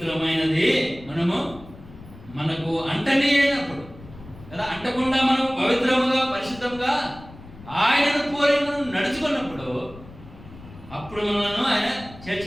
మనకు అంటనే అయినప్పుడు కదా. అంటకుండా మనం పవిత్రముగా పరిశుద్ధంగా ఆయనను పోలి మనం నడుచుకున్నప్పుడు అప్పుడు మనను ఆయన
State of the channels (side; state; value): left; noise; rumble, 18 dB below the sound